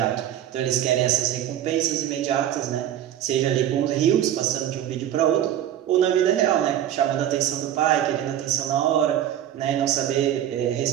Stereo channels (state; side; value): quieter; left; 11.2 dB